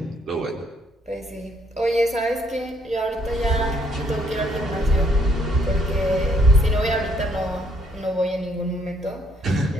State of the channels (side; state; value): both; normal; correlation 0.69